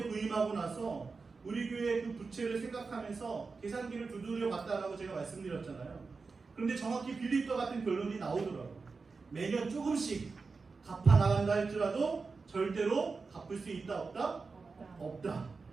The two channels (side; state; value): left; quieter; 4.4 dB